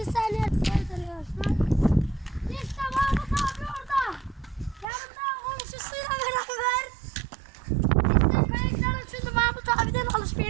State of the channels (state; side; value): drops out; left; at 4.9 s